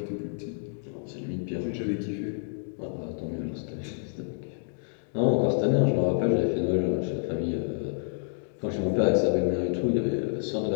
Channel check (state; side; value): silent; right; digital silence